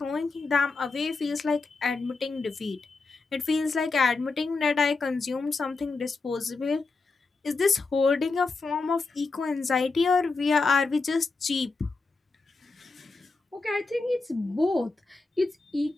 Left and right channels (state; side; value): quieter; right; 3.9 dB